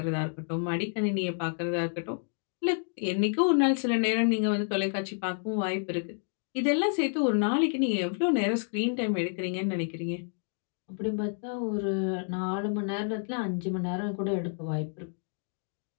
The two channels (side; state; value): right; silent; 55 dB below the other